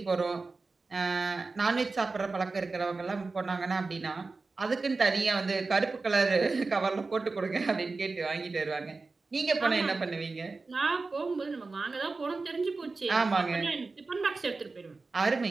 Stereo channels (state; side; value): quieter; left; 3.8 dB